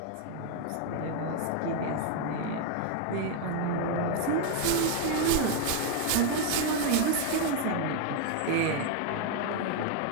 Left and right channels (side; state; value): both; different; correlation 0.00